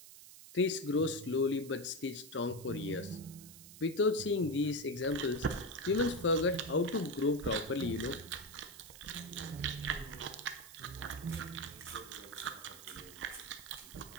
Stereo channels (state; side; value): noise; right; hiss, 17 dB below the sound